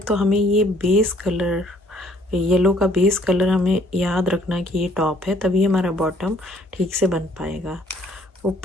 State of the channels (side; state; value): both; normal; correlation 0.61